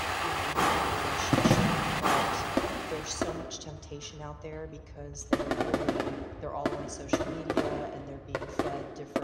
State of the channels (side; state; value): both; identical; correlation 1.00